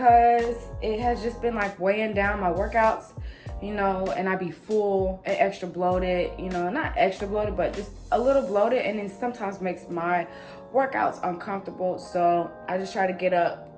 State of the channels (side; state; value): both; identical; correlation 1.00